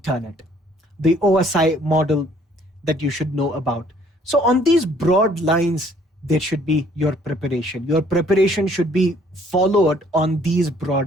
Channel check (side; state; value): both; normal; correlation 0.60